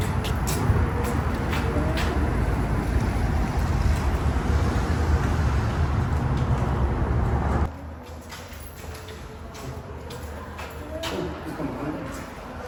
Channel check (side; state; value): both; identical; correlation 1.00